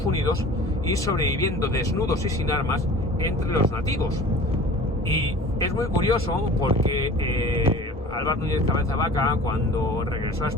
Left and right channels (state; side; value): normal; both; correlation 0.42